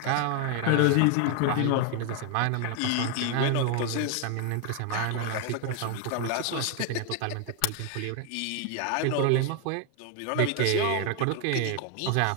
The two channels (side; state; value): both; different; correlation 0.01